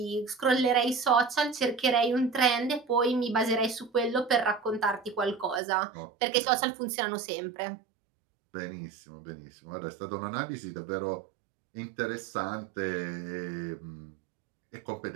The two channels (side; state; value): left; drops out; at 5.6 s